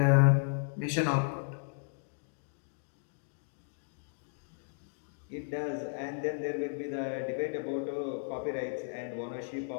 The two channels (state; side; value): silent; right; digital silence